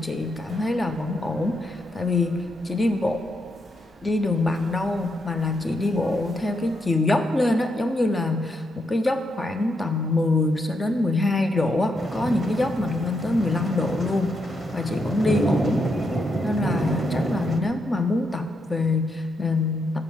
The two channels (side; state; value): both; normal; correlation 0.80